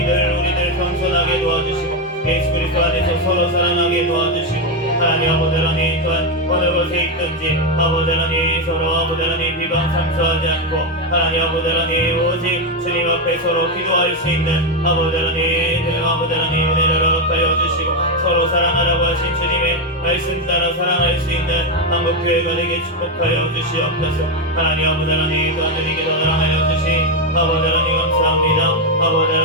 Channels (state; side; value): normal; both; correlation 0.07